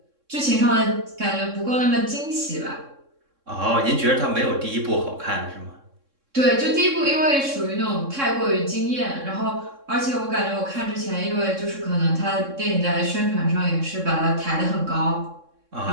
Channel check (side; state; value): left; late; 3.6 ms